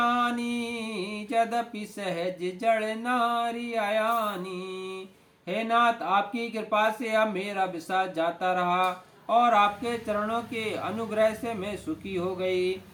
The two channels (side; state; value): both; identical; correlation 1.00